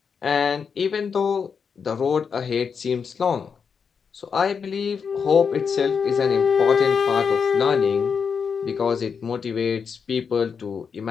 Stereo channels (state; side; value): quieter; right; 6.2 dB